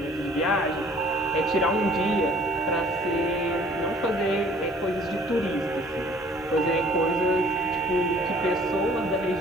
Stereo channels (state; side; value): normal; both; correlation 0.54